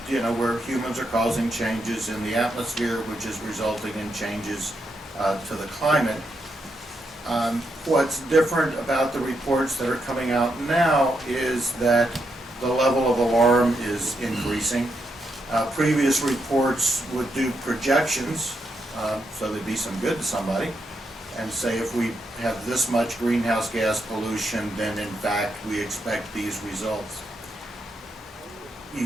you know, where humans are causing changes in the atmosphere, which is resulting in changes to the climate. What's different about the reports that are coming out now is that the level of alarm is increasing. Previous reports would do projections, so they'd be some good to somebody, and say if we have this much greenhouse gas pollution, then in fact we expect these results. You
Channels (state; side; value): normal; both; correlation 0.81